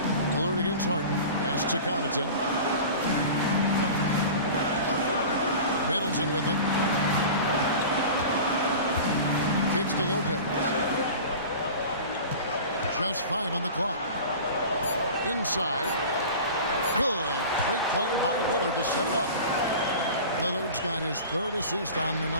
Lillard against Harden. Pass to Connaughton. Middleton with it. Kicks to Lopez. Just 5 on the clock. Inside. Good. Great play by Lillard to set it up. Lillard's got his 3rd assist on the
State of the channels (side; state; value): both; inverted; correlation -0.36